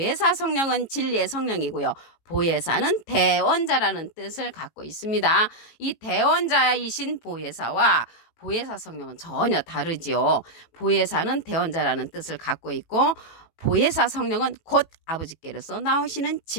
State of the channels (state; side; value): late; right; 18 ms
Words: 성령은 진리의 성령이고요. 보혜사는 대원자라는 뜻을 갖고 있습니다. 이 대원자이신 보혜사와 보혜사 성령은 전혀 다르지요. 보혜사는 대원자라는 뜻을 갖고 있고 보혜사 성령은 곧 아버지께로서 나오시는